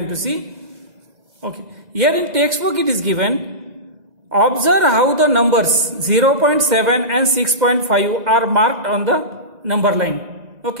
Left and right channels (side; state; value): left; late; 2.0 ms